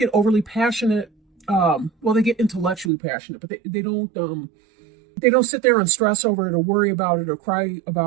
overly passionate well, they get intellectually passionate, but they don't sit there and stress over it or worry about it or cry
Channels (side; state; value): left; drops out; at 2.9 s